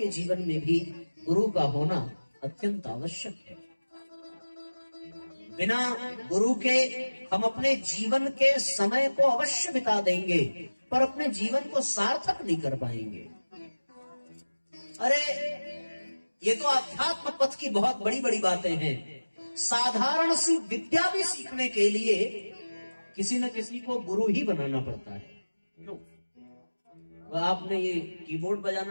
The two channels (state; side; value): inverted; both; correlation -1.00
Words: जीवन में भी गुरु का होना अत्यंत आवश्यक है। बिना गुरु के हम अपने जीवन के समय को अवश्य बिता देंगे, पर अपने जीवन को सार्थक नहीं कर पाएंगे। अरे ये तो अध्यात्म पथ की बहुत बड़ी बड़ी बातें हैं। साधारण सी विद्या भी सीखने के लिए किसी न किसी को गुरु ही बनाना पड़ता है। क्यों? आपने ये कीबोर्ड